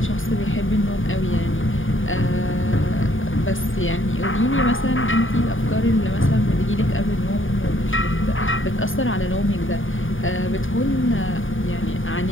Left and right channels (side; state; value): right; late; 0.58 ms